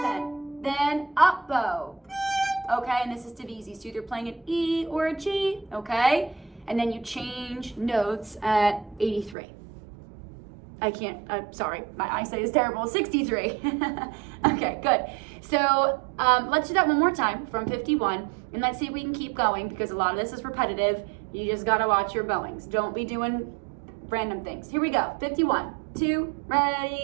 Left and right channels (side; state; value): left; drops out; at 9.3 s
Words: then up bow. Okay, and this is Divisi, so either playing an E or a G, okay? And then you change notes at 83. I'm sorry, my eyesight is terrible, 63. Okay, good. So let's do that one more time from 51, and let's see if we can keep going because a lot of this is repetitive. You just gotta watch your bowings. Don't be doing random things. Here we go, 51, 2,